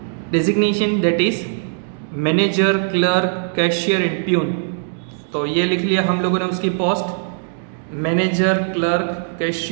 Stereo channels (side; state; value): left; silent; 66 dB below the other